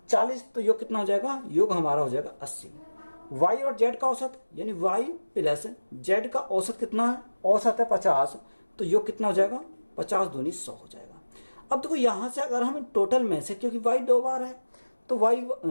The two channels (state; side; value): inverted; both; correlation -1.00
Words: 40, तो योग कितना हो जाएगा, योग हमारा हो जाएगा 80। y और z का औसत, यानी y प्लस z का औसत कितना है, औसत है 50, तो योग कितना हो जाएगा, 50 दूनी 100 हो जाएगा। अब देखो यहां से अगर हम टोटल में से, क्योंकि y 2 बार है तो y